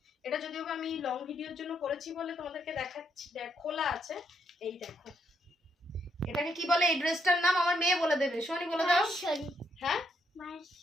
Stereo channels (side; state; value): both; normal; correlation 0.76